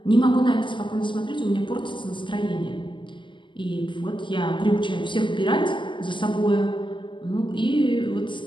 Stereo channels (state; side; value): late; right; 0.24 ms